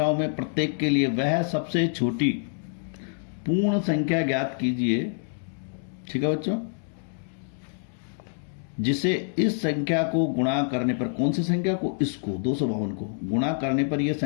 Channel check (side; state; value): right; silent; 61 dB below the other